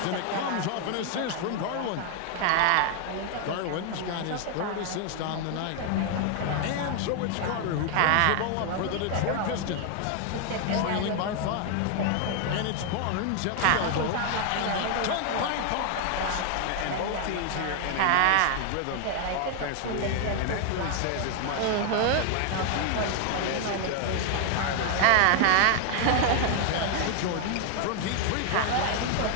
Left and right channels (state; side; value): different; both; correlation 0.00